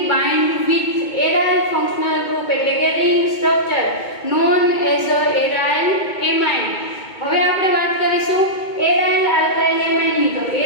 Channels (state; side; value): late; right; 2.2 ms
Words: bind with aryl functional group એટલે કે રિંગ સ્ટ્રક્ચર નોન એઝ અ એરાઇલ એમાઇન. હવે આપણે વાત કરીશું એરાઇલ આલ્કાઇલ એમાઇનની. તો